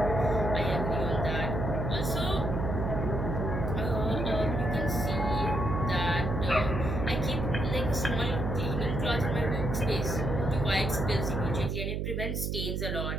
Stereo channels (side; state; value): right; noise; hum, 1 dB below the sound